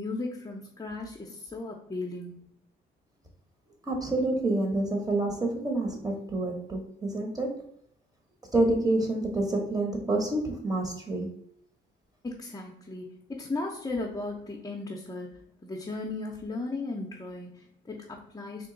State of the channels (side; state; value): both; normal; correlation 0.74